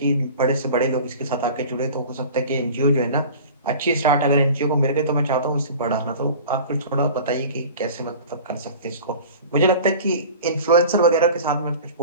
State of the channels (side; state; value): both; inverted; correlation -0.40